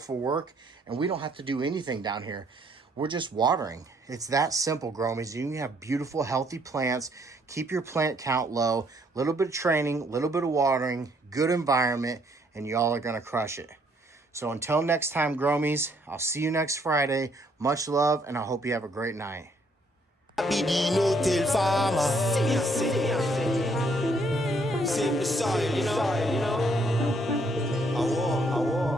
work, and we don't have to do anything down here. We're just watering. It's that simple, Gromies. You can have beautiful, healthy plants. Keep your plant count low. A little bit of training, a little bit of watering, good environment, and y'all are going to crush it. So until next time, Gromies, I'll see you next Friday. Much love, and I hope you have a great night. I be the no-till farmer. Save the soil, you know.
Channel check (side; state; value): both; normal; correlation 0.67